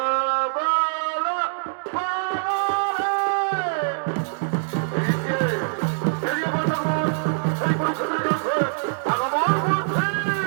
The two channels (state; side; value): silent; left; digital silence